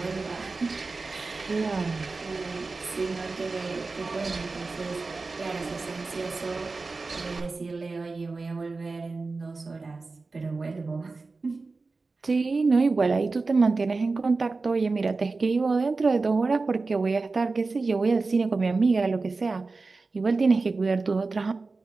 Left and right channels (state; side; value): quieter; left; 3.8 dB